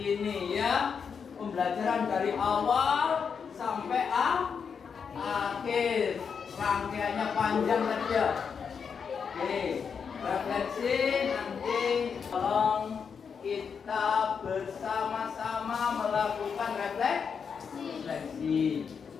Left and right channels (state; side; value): quieter; right; 6.4 dB